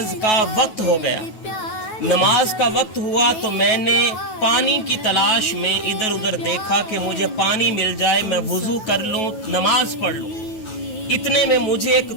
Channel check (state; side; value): late; right; 9.3 ms